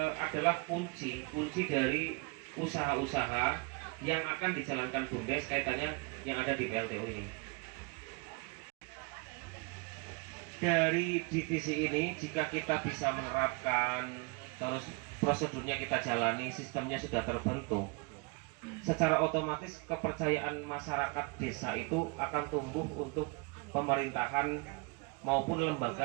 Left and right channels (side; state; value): left; quieter; 29.8 dB